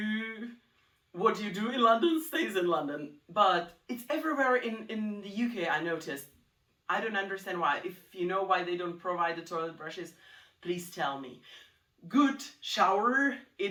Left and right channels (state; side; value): identical; both; correlation 1.00